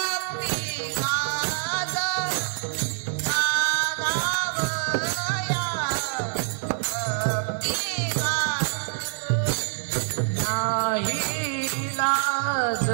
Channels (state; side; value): silent; left; 57 dB below the other